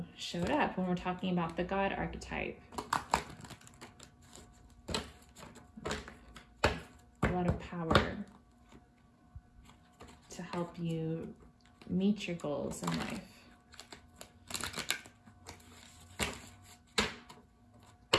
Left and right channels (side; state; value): both; identical; correlation 1.00